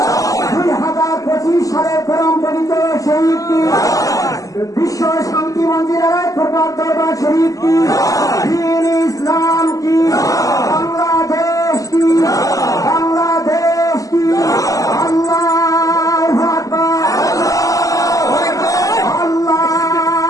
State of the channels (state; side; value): late; right; 0.17 ms